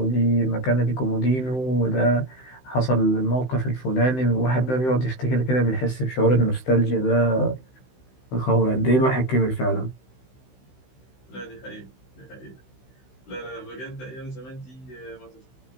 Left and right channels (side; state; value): right; late; 16 ms